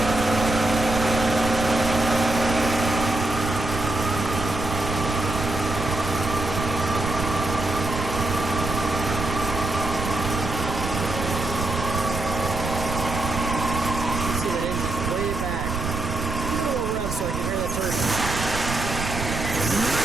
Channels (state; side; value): noise; right; rumble, 5 dB below the sound